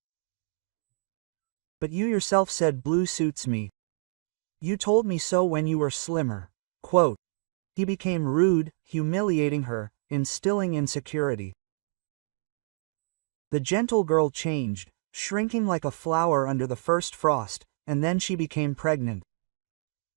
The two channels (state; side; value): silent; left; 59 dB below the other